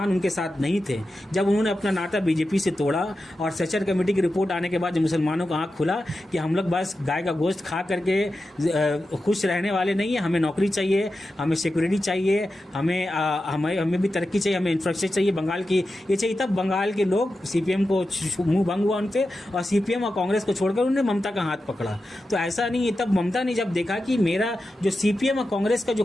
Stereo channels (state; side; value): normal; both; correlation 0.91